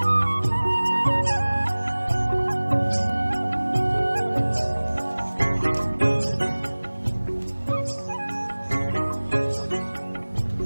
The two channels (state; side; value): inverted; both; correlation -1.00